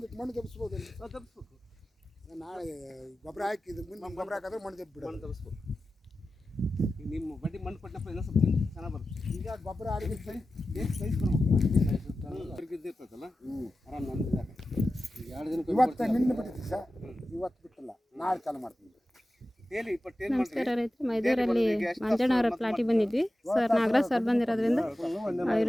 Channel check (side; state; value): both; normal; correlation 0.94